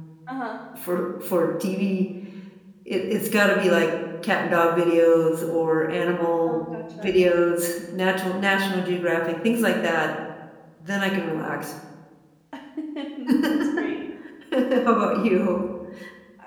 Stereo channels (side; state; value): both; identical; correlation 1.00